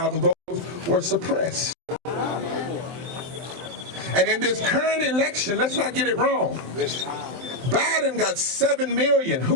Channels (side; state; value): left; late; 23 ms